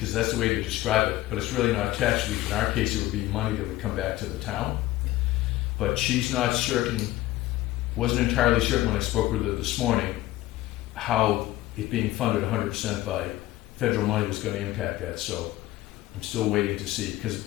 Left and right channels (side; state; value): right; quieter; 16.3 dB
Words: that's the way to describe it, but it's really not tax relief. In our case, it would be money that would come back to the town. But she's not certain, wasn't entirely certain when I spoke with her this morning, how it being funded 100% by federal money was going to impact that. So I'm still waiting to see, because